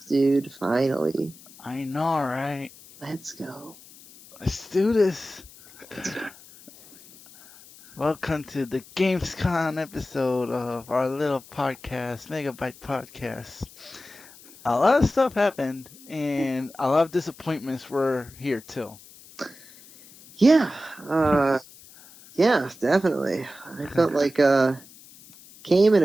dude. Finally. I know, right? Let's go. Let's do this. Let's go. Welcome to the Gamescom episode of our little podcast, Megabyte podcast. A lot of stuff happened, and a lot of disappointments were here too. Yeah. Yeah, definitely. I felt like came and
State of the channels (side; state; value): left; noise; hiss, 22 dB below the sound